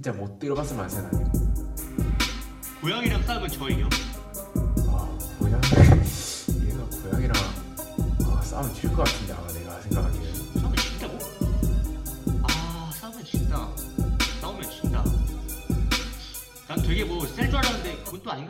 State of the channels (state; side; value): identical; both; correlation 1.00